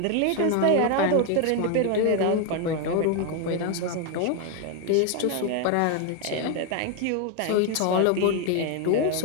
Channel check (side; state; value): both; different; correlation 0.01